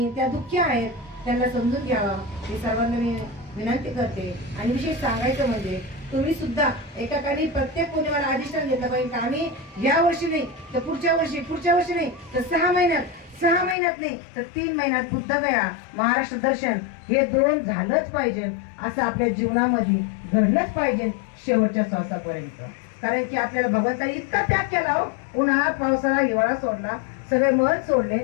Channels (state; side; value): drops out; right; at 13.8 s